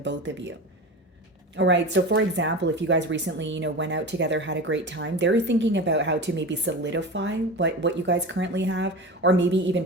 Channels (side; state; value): both; normal; correlation 0.29